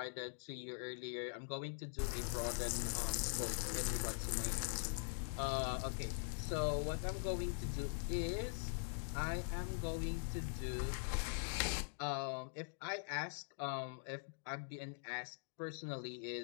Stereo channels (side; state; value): right; silent; digital silence